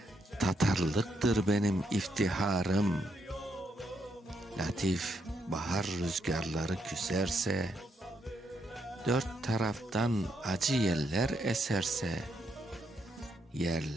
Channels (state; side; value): normal; both; correlation 0.77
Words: Tatarlıktır benim iftiharım. Latif bahar rüzgarları küserse, dört taraftan acı yeller eserse,